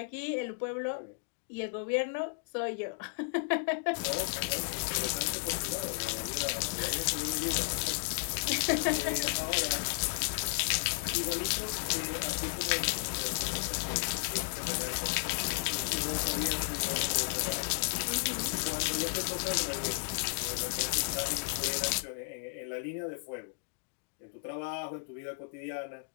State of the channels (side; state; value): right; silent; digital silence